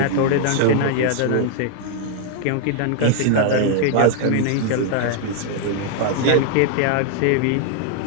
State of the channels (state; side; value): different; both; correlation 0.00